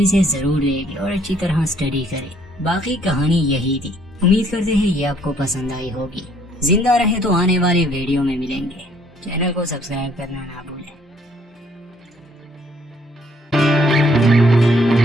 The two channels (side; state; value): both; normal; correlation 0.64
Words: इसे जरूर देखें और अच्छी तरह स्टडी करें। बाकी कहानी यही थी। उम्मीद करते हैं ये आपको पसंद आई होगी। जिंदा रहे तो आने वाले वीडियो में मिलेंगे। चैनल को सब्सक्राइब करना ना भूलें।